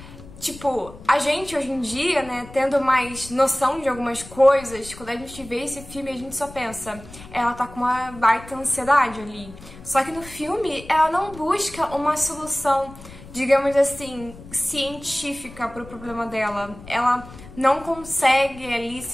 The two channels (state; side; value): noise; left; rumble, 17 dB below the sound